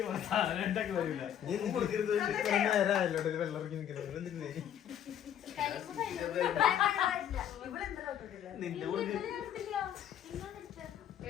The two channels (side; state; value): right; quieter; 10.1 dB